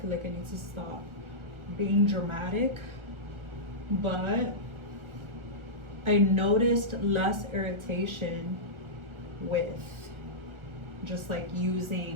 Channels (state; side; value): late; left; 1.4 ms